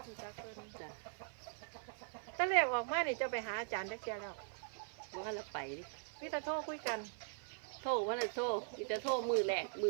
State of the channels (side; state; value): left; silent; 50 dB below the other